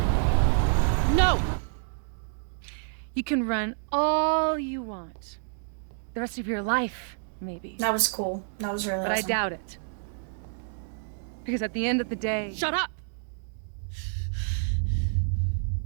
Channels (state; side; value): silent; left; digital silence